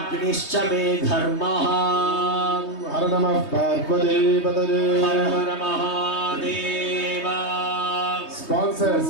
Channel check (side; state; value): right; late; 3.2 ms